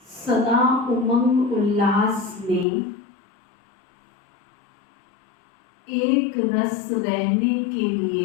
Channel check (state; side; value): drops out; right; at 2.7 s